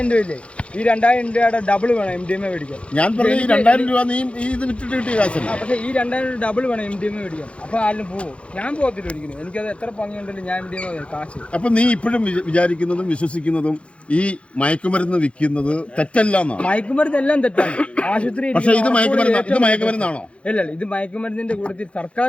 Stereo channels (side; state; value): right; late; 0.060 ms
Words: രൂപയില്ലേ? ഈ 2000 രൂപയുടെ ഡബിൾ വേണം MDMA മേടിക്കാൻ. ഞാൻ പറഞ്ഞ ഈ 2000 രൂപ നീ ഇത് വിറ്റിട്ട് കിട്ടിയ കാശല്ല. പക്ഷേ ഈ 2000 ഡബിൾ വേണം MDMA മേടിക്കാൻ. അപ്പൊ ആരും പോകും. ഞാൻ പോകത്തില്ല ഒരിക്കലും. എനിക്കത് എത്ര ഭംഗിയുണ്ടല്ലോ ഞാൻ MDMA കാശ്. അപ്പൊ നീ ഇപ്പോഴും വിചാരിക്കുന്നതും വിശ്വസിക്കുന്നതും ഈ മയക്കുമരുന്ന് വിൽക്കുന്നത് തെറ്റല്ല എന്നാണ്? മയക്കുമരുന്ന് എല്ലാം തെറ്റാണ്. ആശുപത്രി. പക്ഷേ ഇത് മയക്കുമരുന്നാണോ? അല്ല, ഇത് മയക്കുമരുന്നിന്റെ കൂട്ടത്തിൽ